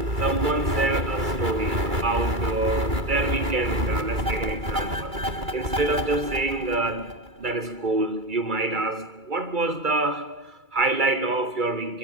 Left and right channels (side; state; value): left; late; 2.3 ms